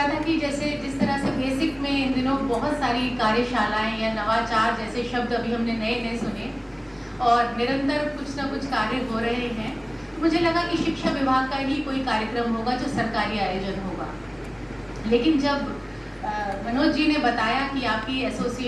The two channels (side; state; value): both; identical; correlation 1.00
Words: था कि जैसे जिस तरह से बेसिक में इन दिनों बहुत सारी कार्यशालाएं या नवाचार जैसे शब्द अभी हमने नए नए सुने और निरंतर कुछ ना कुछ कार्य हो रहे हैं, मुझे लगा कि शिक्षा विभाग का ही कोई कार्यक्रम होगा जो सरकारी आयोजन होगा। लेकिन जब मनोज जी ने बताया कि आपकी